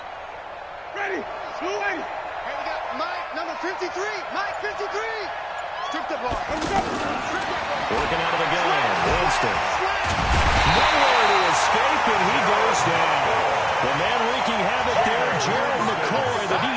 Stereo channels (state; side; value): identical; both; correlation 1.00